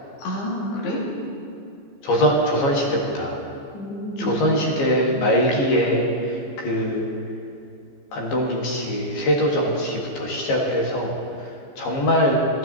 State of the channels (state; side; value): late; right; 15 ms